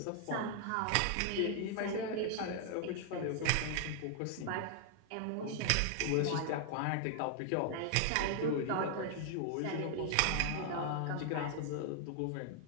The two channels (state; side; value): different; both; correlation 0.00